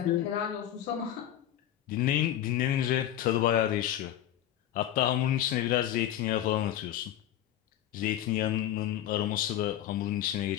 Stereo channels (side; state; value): right; quieter; 11.9 dB